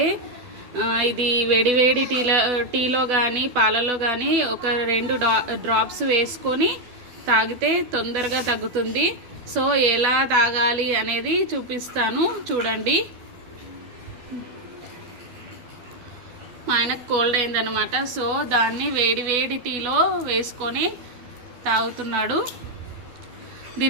ఇది వేడివేడి టీలో కానీ పాలలో కానీ ఒక 2 డ్రాప్స్ వేసుకొని తాగితే తొందరగా తగ్గుతుంది. సో ఎలా తాగాలి అనేది చూపిస్తాను, చూడండి. మా ఆయనకు కోల్డ్ అయిందనమాట. సో దాన్ని వేడి టీలో వేసుకొని తాగుతున్నాడు.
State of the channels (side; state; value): left; late; 12 ms